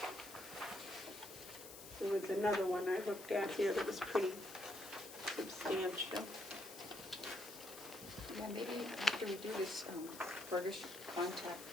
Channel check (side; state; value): left; noise; hiss, 13 dB below the sound